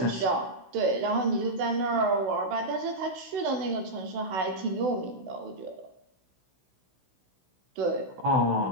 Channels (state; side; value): late; left; 16 ms